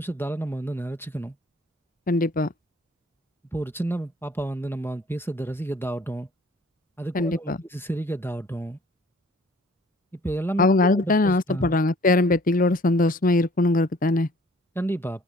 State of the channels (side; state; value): both; normal; correlation 0.54